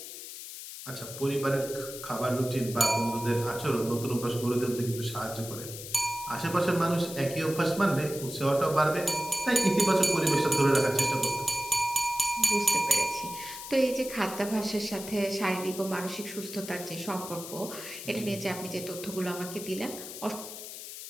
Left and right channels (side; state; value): left; noise; hiss, 11 dB below the sound